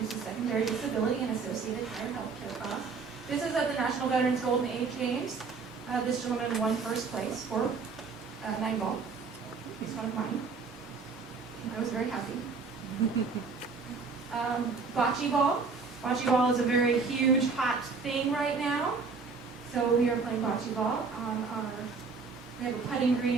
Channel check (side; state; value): left; quieter; 4.8 dB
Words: secondary disability and associated higher health care costs. This is at the National Veterans Golden Age Games. This gentleman won first place for 9-ball. He's one of mine. I was very happy. Bocce ball. Bocce ball is a very huge, hot thing right now. So we are playing bocce ball on we have a putting